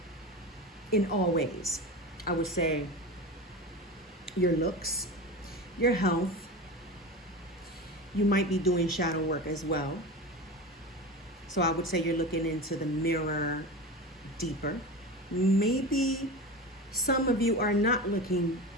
In all ways. I would say your looks, your health. You might be doing shadow work as well. So I would say you're looking into the mirror deeper. Maybe some of you are not looking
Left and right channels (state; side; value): normal; both; correlation 0.27